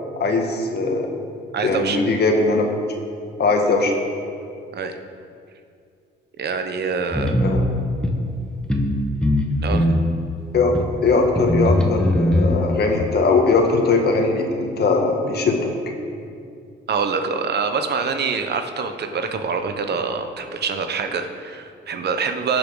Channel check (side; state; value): both; normal; correlation 0.43